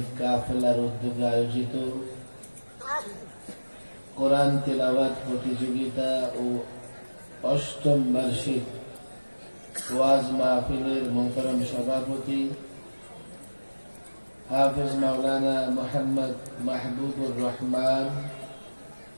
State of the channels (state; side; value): inverted; both; correlation -1.00